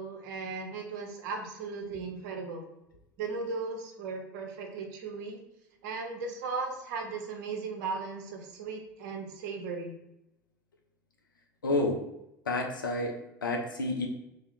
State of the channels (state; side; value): normal; both; correlation -0.04